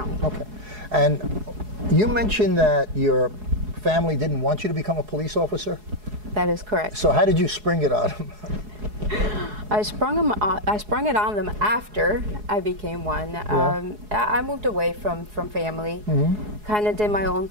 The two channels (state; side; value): late; left; 4.7 ms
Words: Okay. And you mentioned that your family didn't want you to become a police officer? That is correct. So how did you spring it on them? I sprung it on them after I became one. Yeah. I moved away from family, kind of did my own